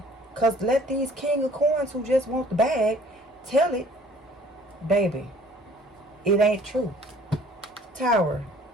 Because let these king of coins who just want the bag tell it. Baby, it ain't true. Tower,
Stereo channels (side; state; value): both; normal; correlation 0.54